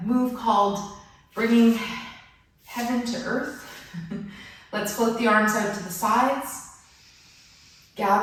move called bringing heaven to earth. Let's float the arms out to the sides.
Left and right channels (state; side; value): identical; both; correlation 1.00